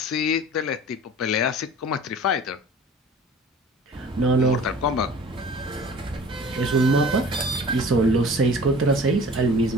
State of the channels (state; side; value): normal; both; correlation 0.44